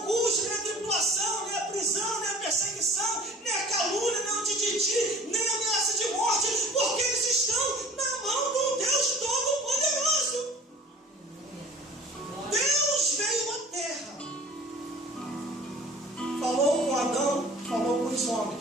nem a tribulação, nem a prisão, nem a perseguição, nem a calúnia, nem o tititi, nem a ameaça de morte, porque eles estão na mão do Deus Todo-Poderoso. Deus veio à terra dos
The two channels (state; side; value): normal; both; correlation 0.47